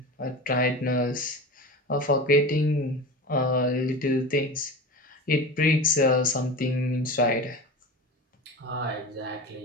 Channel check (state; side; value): normal; both; correlation 0.29